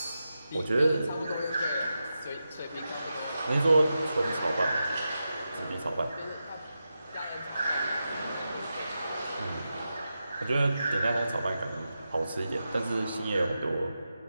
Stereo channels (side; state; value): both; inverted; correlation -0.89